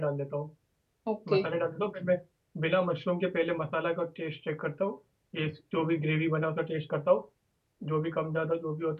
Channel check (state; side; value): identical; both; correlation 1.00